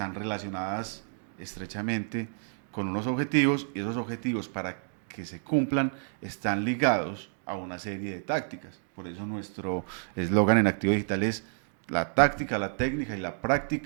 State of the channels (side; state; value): left; silent; 58 dB below the other